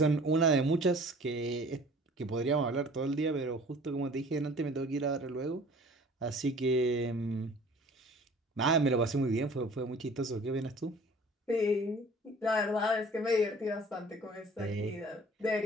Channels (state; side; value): normal; both; correlation 0.48